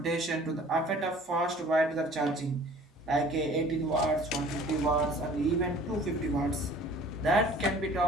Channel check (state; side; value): normal; both; correlation 0.50